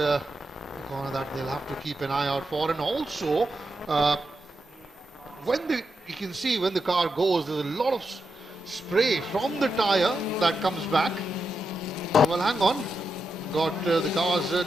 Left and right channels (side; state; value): both; normal; correlation 0.86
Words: corner that they'll have to keep an eye out for. And also, you can see when the car goes, there's a lot of spray from the tire that comes back. Well, hang on. Got the cars